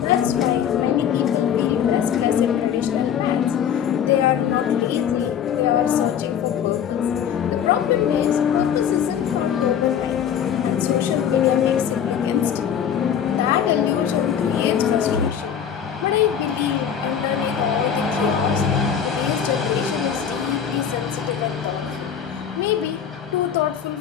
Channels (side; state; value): right; quieter; 8.5 dB